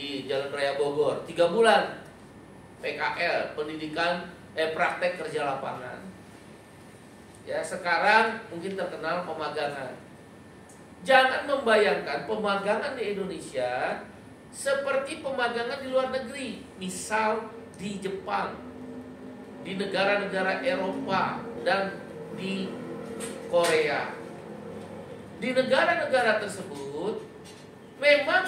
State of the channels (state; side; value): identical; both; correlation 1.00